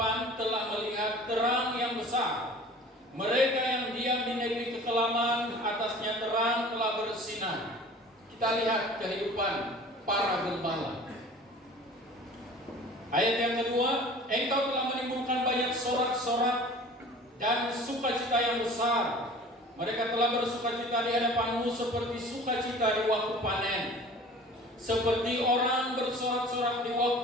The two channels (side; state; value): both; normal; correlation 0.44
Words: telah melihat terang yang besar. Mereka yang diam di negeri kekelaman, atasnya terang telah bersinar. Kita lihat kehidupan para gembala. Ayat yang kedua, engkau telah menimbulkan banyak sorak-sorak dan sukacita yang besar. Mereka telah bersukacita di hadapanmu seperti sukacita di waktu panen, seperti orang bersorak-sorak di